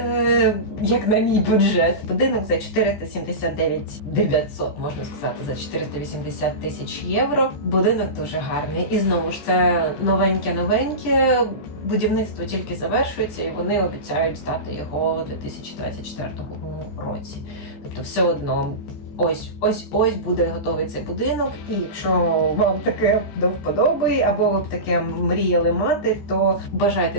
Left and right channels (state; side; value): late; right; 14 ms